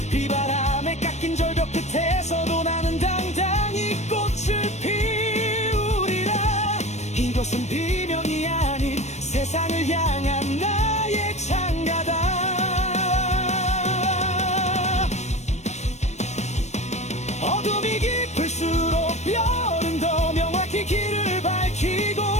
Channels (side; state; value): right; late; 0.33 ms